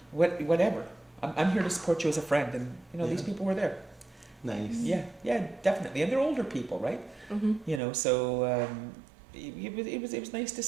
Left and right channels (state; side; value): drops out; left; at 7.8 s